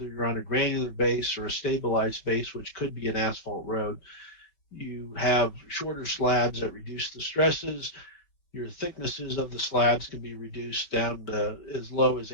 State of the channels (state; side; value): late; right; 5.3 ms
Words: you're on a granular base or a stabilized base, which could be an asphalt road, you have shorter slabs that reduce the stresses. Your thicknesses of the slabs can be reduced down to as low as